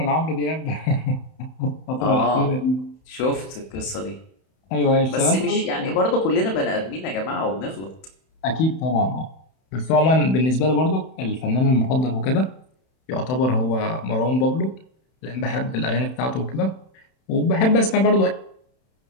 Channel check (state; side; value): late; right; 31 ms